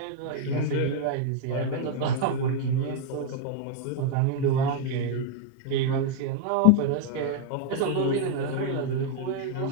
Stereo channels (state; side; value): different; both; correlation 0.00